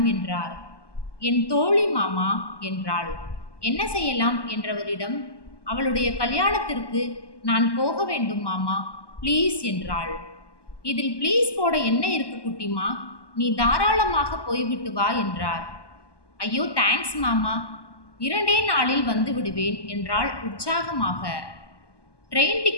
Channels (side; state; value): right; late; 1.2 ms